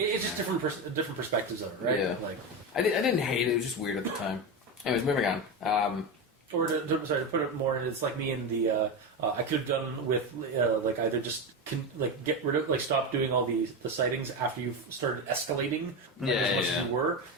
different perspectives of it, right? Yeah. Like, I didn't hate it. It was just weird at the time. Anyways, moving on. or to put it more in, it's like me in the I could have done with like either just get rid of stop doing all the sightings after you've started escalating as much as you were,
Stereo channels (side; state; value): both; normal; correlation 0.16